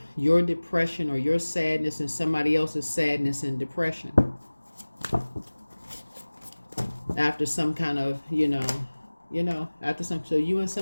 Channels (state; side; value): inverted; both; correlation -1.00